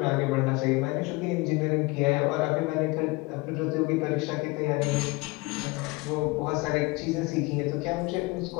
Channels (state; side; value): quieter; right; 24.3 dB